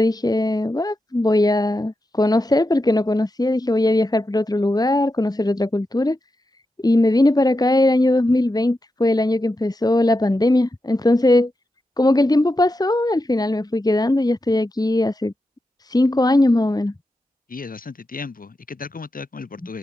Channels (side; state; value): both; normal; correlation 0.88